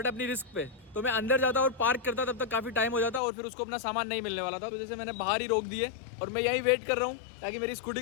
अपनी रिस्क पे। तो मैं अंदर जाता और पार्क करता तब तक काफ़ी टाइम हो जाता और फिर उसको अपना सामान नहीं मिलने वाला था, तो जैसे मैंने बाहर ही रोक दिए और मैं यहीं वेट कर रहा हूँ ताकि मेरी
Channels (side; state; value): right; drops out; at 3.2 s